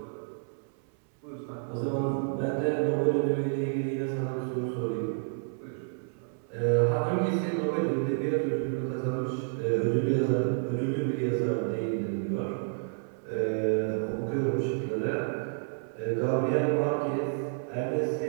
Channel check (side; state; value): left; silent; 58 dB below the other